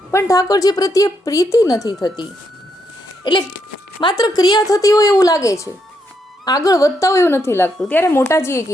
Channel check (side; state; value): both; normal; correlation 0.78